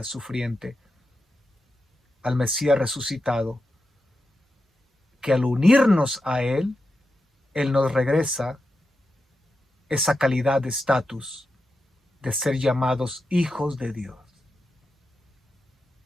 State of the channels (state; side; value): normal; both; correlation 0.89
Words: sufriente, al Mesías resucitado, que al unirnos a Él, Él nos regresa esa calidad de estatus de ser llamados hijos de Dios.